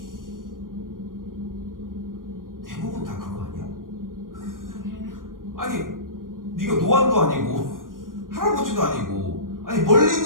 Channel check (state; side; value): late; left; 0.90 ms